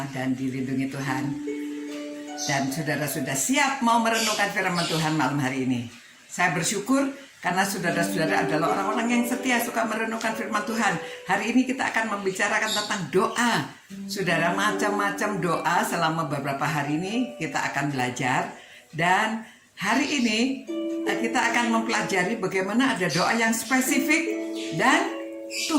dan dilindungi Tuhan. Dan saudara sudah siap mau merenungkan firman Tuhan malam hari ini. Saya bersyukur karena saudara-saudara adalah orang-orang yang setia suka merenungkan firman Tuhan. Hari ini kita akan membicarakan tentang doa. Saudara, macam-macam doa selama beberapa hari ini kita akan belajar. Dan hari ini kita akan mempelajari bagaimana ada doa yang spesifik dan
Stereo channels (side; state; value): both; identical; correlation 1.00